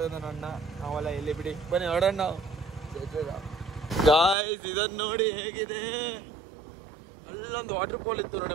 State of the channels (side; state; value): left; drops out; at 4.4 s